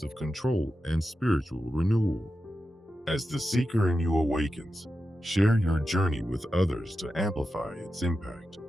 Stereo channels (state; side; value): normal; both; correlation 0.90